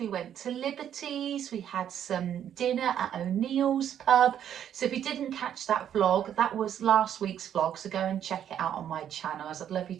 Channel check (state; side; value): quieter; left; 9.8 dB